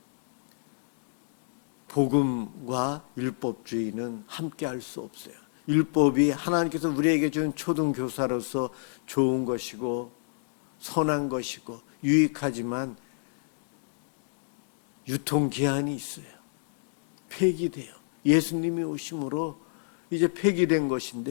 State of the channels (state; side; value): silent; right; digital silence